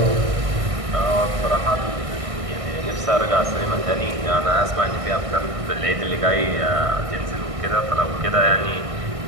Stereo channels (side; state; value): left; late; 1.6 ms